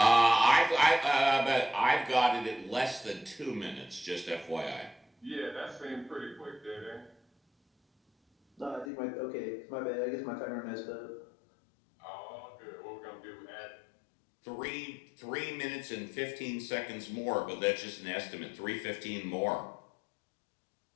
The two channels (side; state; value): right; drops out; at 8.9 s